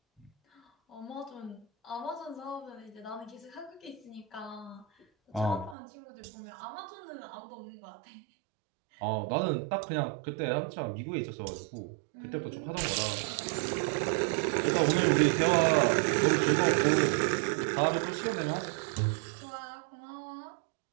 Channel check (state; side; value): drops out; left; at 5.8 s